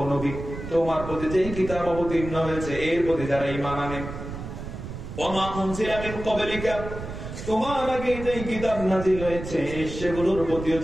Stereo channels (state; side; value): noise; right; rumble, 9 dB below the sound